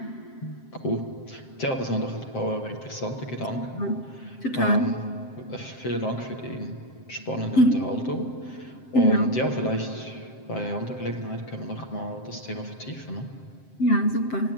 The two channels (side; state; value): right; late; 7.7 ms